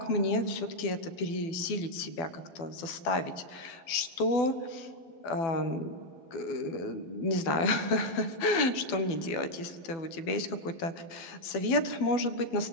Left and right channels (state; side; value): late; right; 12 ms